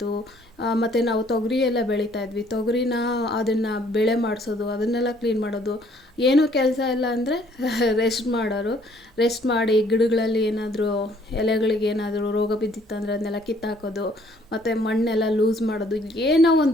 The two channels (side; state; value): both; normal; correlation 0.62